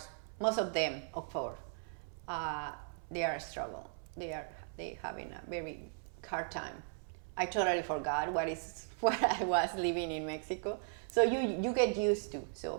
Most of them, of course, they are a struggle. They having a very hard time. I totally forgot what I was living in Mexico. So you get used to.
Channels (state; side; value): silent; left; 53 dB below the other